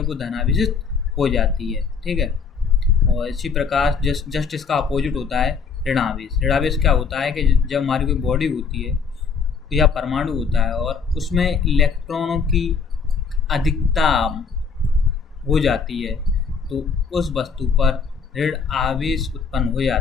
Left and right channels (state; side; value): quieter; right; 5.5 dB